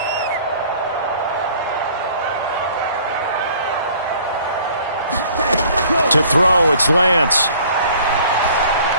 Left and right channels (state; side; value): inverted; both; correlation -0.53